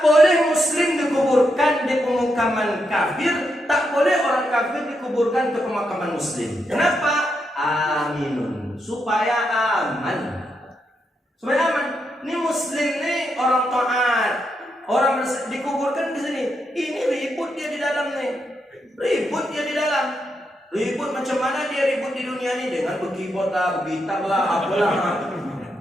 boleh muslim dikuburkan di pemakaman kafir, tak boleh orang kafir dikuburkan ke pemakaman muslim. Kenapa? Aminun, supaya aman. Supaya aman. Ini muslim nih orang taat, orang dikuburkan di sini. Ini ribut dia di dalam nih, ribut dia di dalam. Ribut macam mana dia ribut di dunia ini dengan berkibot lah, bergitar lah, apalah.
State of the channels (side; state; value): both; normal; correlation 0.82